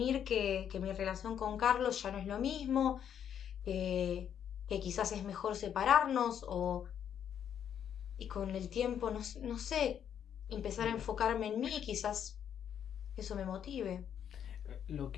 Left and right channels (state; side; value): quieter; right; 8.9 dB